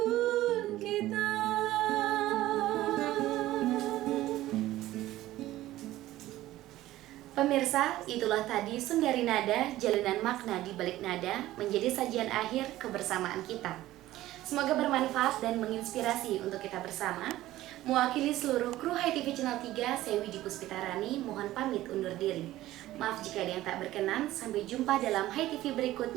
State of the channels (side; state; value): left; quieter; 15.5 dB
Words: kita. Pemirsa, itulah tadi Sundari Nada, jalinan makna di balik nada, menjadi sajian akhir kebersamaan kita. Semoga bermanfaat dan menginspirasi untuk kita bersama. Mewakili seluruh kru Hai TV Channel 3, saya Widi Puspitarani, mohon pamit undur diri. Maaf jika ada yang tak berkenan, sampai jumpa dalam Hai TV